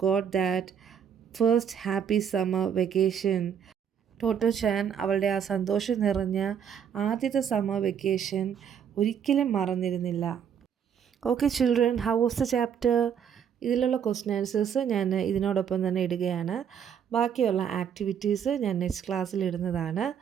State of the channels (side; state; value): left; quieter; 8.2 dB